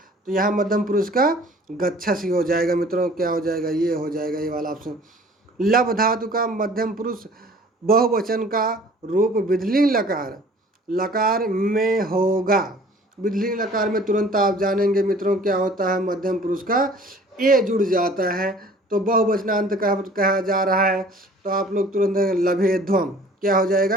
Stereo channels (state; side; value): normal; both; correlation 0.50